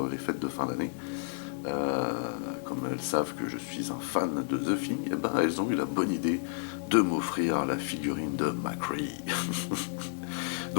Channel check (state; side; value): silent; right; 57 dB below the other